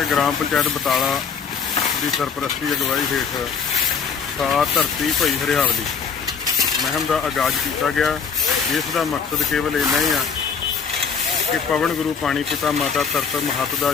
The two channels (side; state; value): right; quieter; 6.1 dB